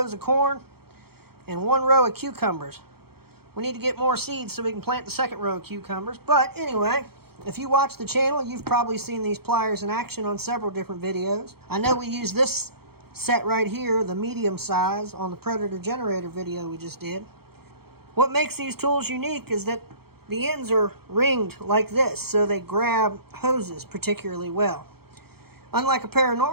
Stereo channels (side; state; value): left; late; 0.95 ms